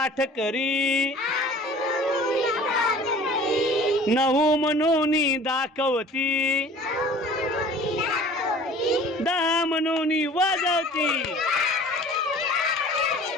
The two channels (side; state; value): both; normal; correlation 0.46